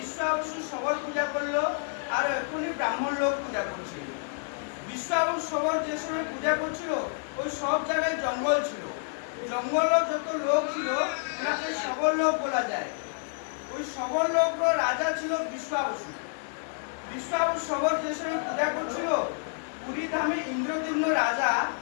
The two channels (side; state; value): right; silent; 59 dB below the other